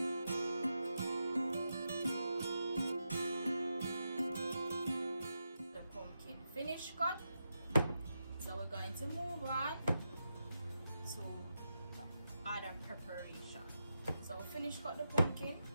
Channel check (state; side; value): inverted; both; correlation -0.87